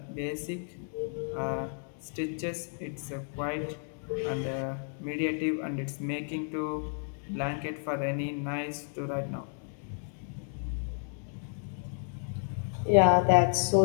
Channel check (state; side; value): silent; right; 57 dB below the other